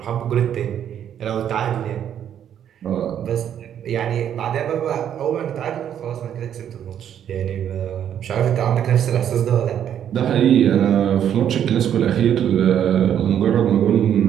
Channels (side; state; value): left; quieter; 9.6 dB